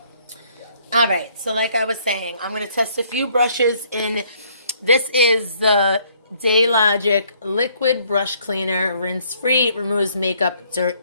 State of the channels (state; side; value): inverted; both; correlation -0.64